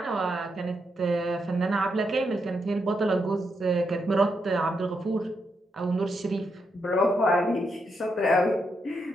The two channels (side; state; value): both; normal; correlation 0.81